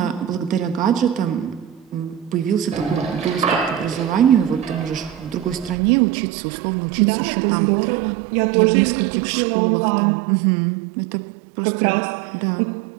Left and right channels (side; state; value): left; drops out; at 5.8 s